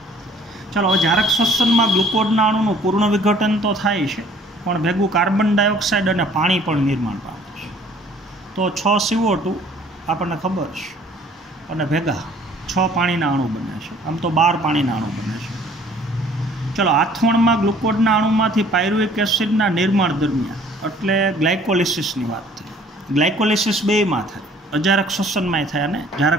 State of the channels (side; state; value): both; normal; correlation 0.56